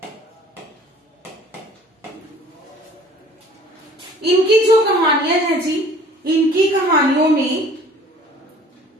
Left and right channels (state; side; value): normal; both; correlation 0.51